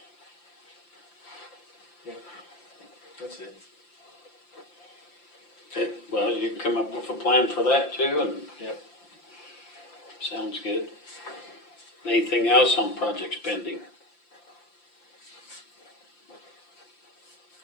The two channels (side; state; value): right; late; 5.8 ms